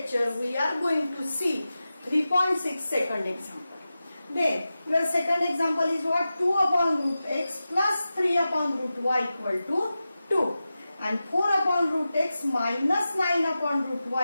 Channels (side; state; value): both; inverted; correlation -0.93